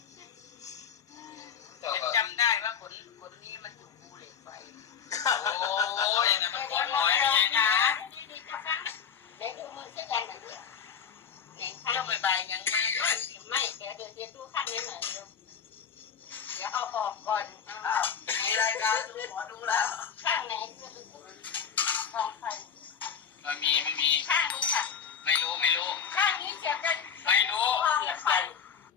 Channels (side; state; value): right; quieter; 7.3 dB